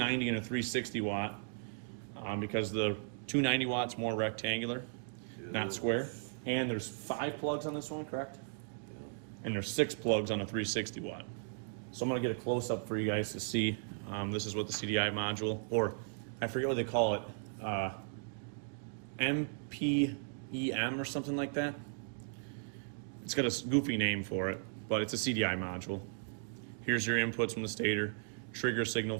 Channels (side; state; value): left; silent; digital silence